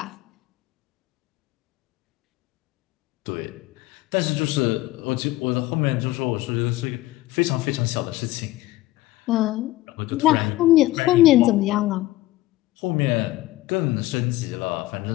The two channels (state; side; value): quieter; right; 17.2 dB